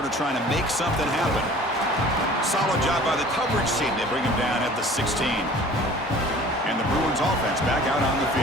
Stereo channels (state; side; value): normal; both; correlation 0.47